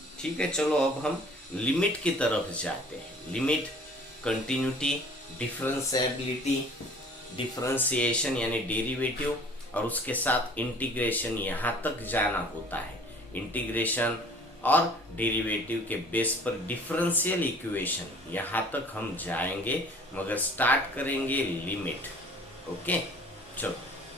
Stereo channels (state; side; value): normal; both; correlation 0.50